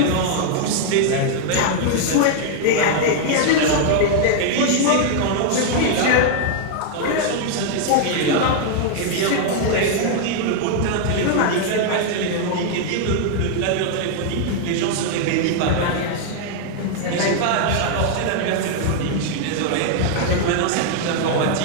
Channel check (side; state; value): both; different; correlation 0.00